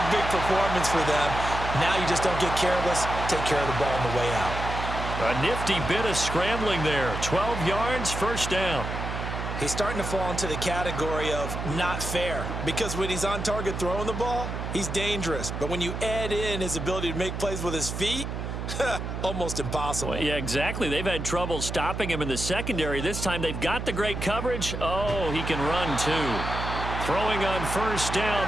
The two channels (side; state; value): right; noise; hum, 5 dB below the sound